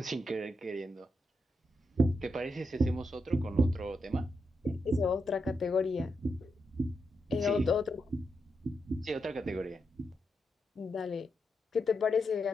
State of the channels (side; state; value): both; normal; correlation 0.84